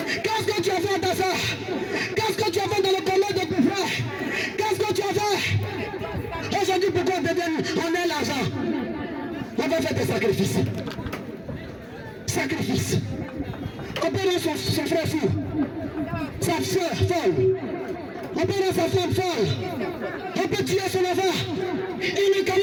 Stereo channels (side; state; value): both; identical; correlation 1.00